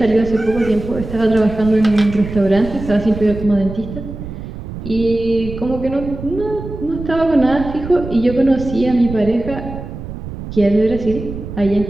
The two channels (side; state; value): right; noise; rumble, 10 dB below the sound